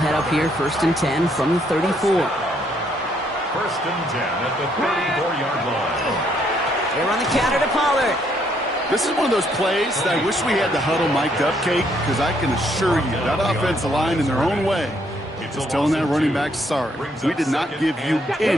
up here 1st and 10 from the 34. 1st and 10 at the 34-yard line. They run the counter to Pollard. This is one of those plays that I wish we had the huddle mic'd up, Kate, because I can assure you that offensive line in their own way is telling that running back, sorry, we did not give you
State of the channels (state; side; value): normal; both; correlation 0.70